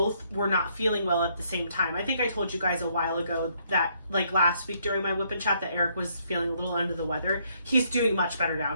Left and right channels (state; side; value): inverted; both; correlation -0.70